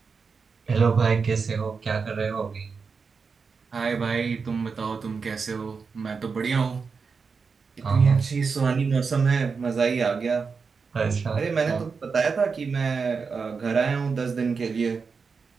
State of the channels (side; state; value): left; quieter; 5.2 dB